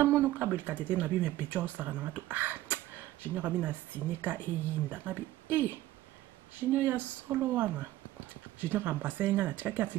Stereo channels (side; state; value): left; quieter; 15.3 dB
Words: mono ka belikata te na bi me pecho sara na to Junior abi na sinika eyinda abi Junior ya solo wana Junior ambasenga na tikaki